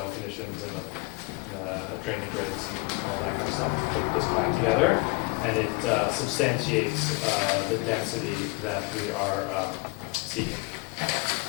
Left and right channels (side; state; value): right; quieter; 27.0 dB